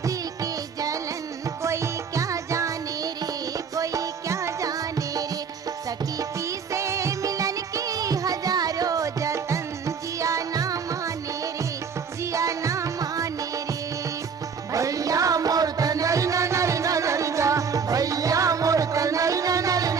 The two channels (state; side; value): quieter; left; 6.1 dB